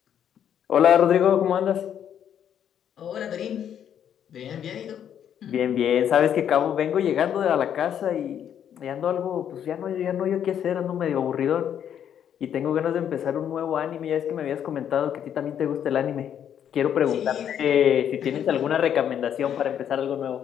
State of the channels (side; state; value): right; quieter; 9.3 dB